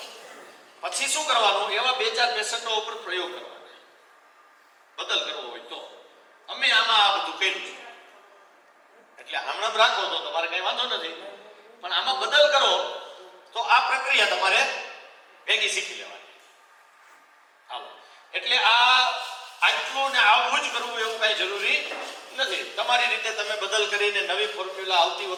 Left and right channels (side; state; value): both; identical; correlation 1.00